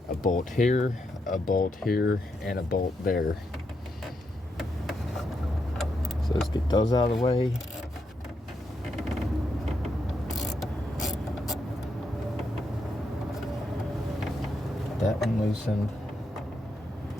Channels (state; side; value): normal; both; correlation 0.81